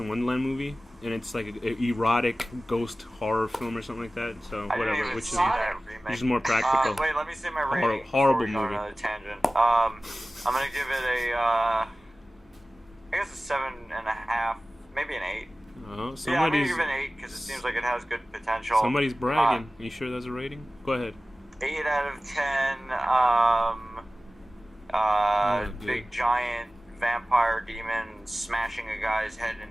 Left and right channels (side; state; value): both; normal; correlation 0.96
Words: Wonderland movie, and it's like an erotic ghost horror film or something like that. So whatever, which is more practical. Wait, let me say my rating. Horrible movie. Another tangent. I'm gonna give it I guess a 7.5, maybe an 8. Oh, yeah, I'm gonna give it an 8 because it seems like it has good potential. Somebody's bragging. Are you sure that's a rating? Go ahead. 8 out of 10. Big giant vampire demon smashing a guy's head